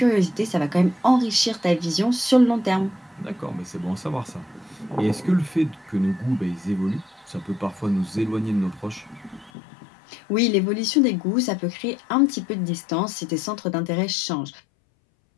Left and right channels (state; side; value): drops out; right; at 9.5 s